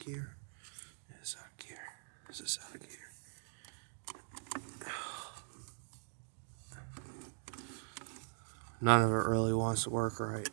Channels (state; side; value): silent; left; digital silence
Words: It is out of gear. This is out of gear. None of it really wants to work right.